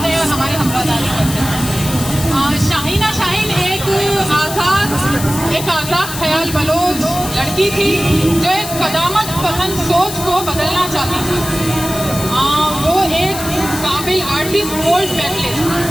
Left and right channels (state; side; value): noise; left; hiss, 8 dB below the sound